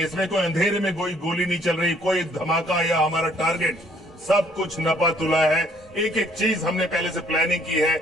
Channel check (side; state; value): both; normal; correlation 0.63